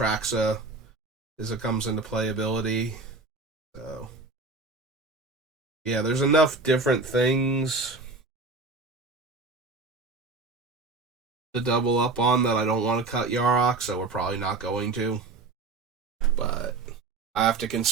is a comes into play ability. So yeah, there's enough different things to double up on that I don't want to cut Yarok, so we're probably not going to. But I have to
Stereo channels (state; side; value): quieter; left; 3.6 dB